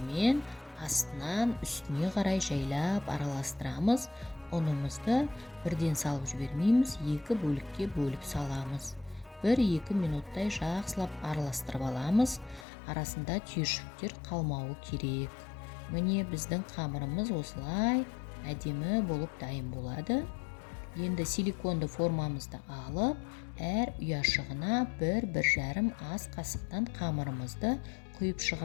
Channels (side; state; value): right; drops out; at 12.7 s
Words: астынан үстіне қарай жайлап араластырамыз. Ұнымызды бірден салып жібермейміз, 2 бөлікке бөліп саламыз. 1-2 минуттай жақсылап араластырып аламыз. Арасында түйіршіктер қалмауы керек. Міне біздің қамырымыз осылай әдемі болып дайын болады. Енді силиконды формамызды алып, әр ұяшығына 1-1,5 ас қасықтан қамырымызды құйып